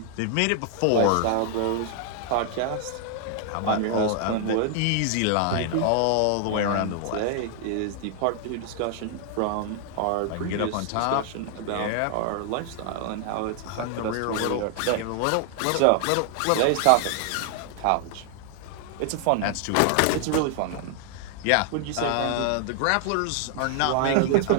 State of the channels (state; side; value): different; both; correlation 0.00